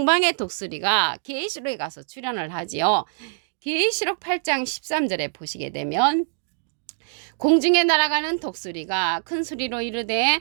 독수리가 계시록에 가서 출연을 하지요. 계시록 8장 13절에 보시게 되면 공중에 날아가는 독수리가 큰 소리로 이르되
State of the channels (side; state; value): left; silent; digital silence